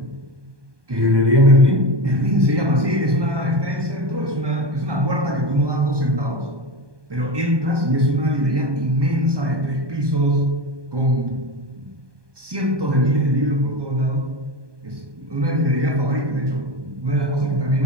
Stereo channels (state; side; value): late; left; 1.2 ms